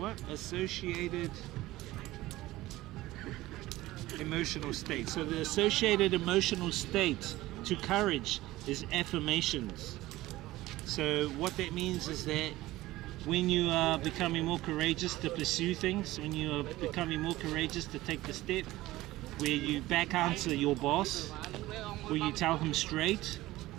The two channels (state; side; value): quieter; left; 17.4 dB